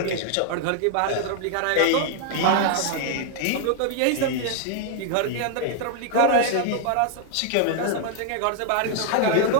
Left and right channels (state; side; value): different; both; correlation 0.00